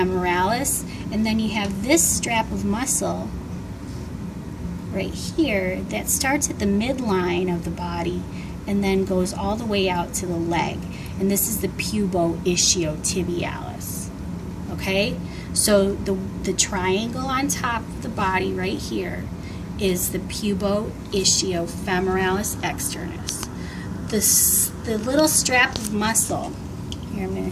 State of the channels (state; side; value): identical; both; correlation 1.00